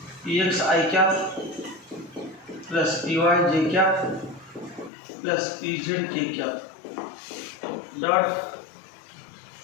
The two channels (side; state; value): right; drops out; at 4.9 s